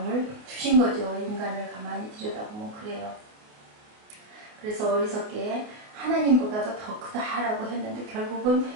주신 거죠. 인간을 가만히 들여다보면 그래요. 그래서 어리석게 하나님보다도 더 크다라고 했는데 결국은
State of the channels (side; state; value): left; late; 28 ms